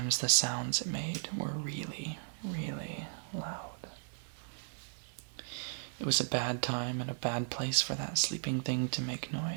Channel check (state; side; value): silent; left; 54 dB below the other